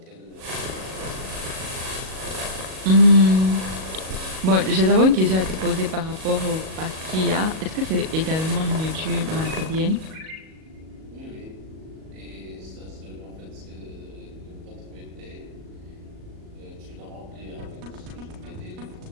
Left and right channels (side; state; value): left; late; 38 ms